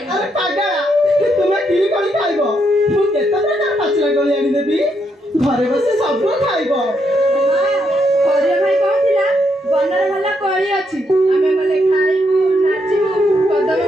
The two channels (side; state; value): both; normal; correlation 0.77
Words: अरे पागला तुम की कोली खाइब मु केते प्रकार पाचला कोली आनी देबी घरे बसे सब खाइब। हरिया भाई कहथिला बणरे ଭଲ କୋଳି ଅଛି ଆମେ ଗଲେ ଖାଇବୁ ନାଚିବୁ କଦମ